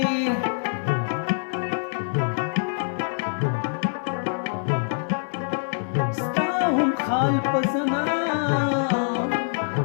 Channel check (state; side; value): silent; right; digital silence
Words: ستا هم خال پسنا